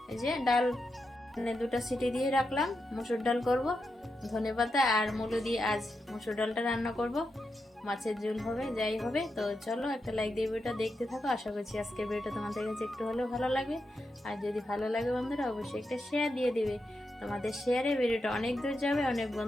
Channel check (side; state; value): both; normal; correlation 0.87